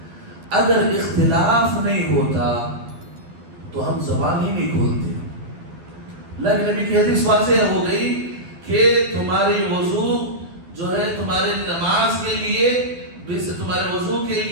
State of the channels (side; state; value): left; late; 12 ms